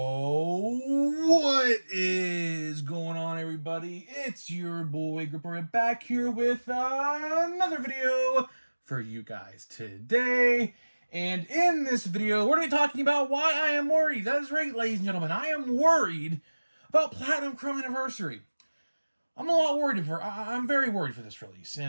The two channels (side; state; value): both; inverted; correlation -1.00